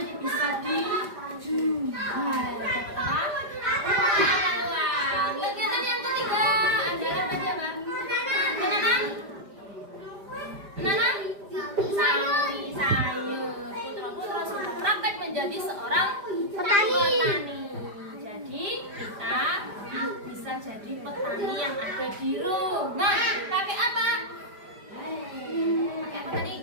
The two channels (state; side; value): late; left; 5.0 ms